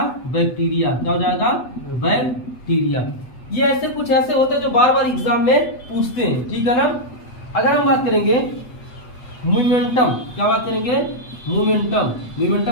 बैक्टीरिया, क्या हो जाएगा, बैक्टीरिया। ये ऐसे कुछ ऐसे होते हैं जो बार बार एग्जाम में पूछते हैं, ठीक है ना। अगर हम बात करेंगे मोमेंटम, क्या बात करेंगे, मोमेंटम, मोमेंटम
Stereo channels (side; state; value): right; late; 8.1 ms